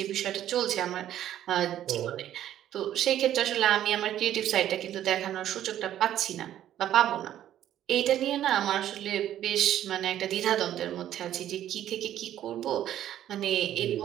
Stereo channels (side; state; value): left; quieter; 11.7 dB